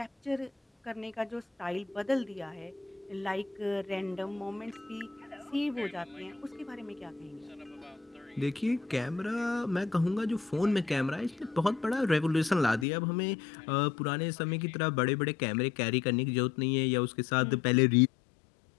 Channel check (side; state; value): right; drops out; at 12.9 s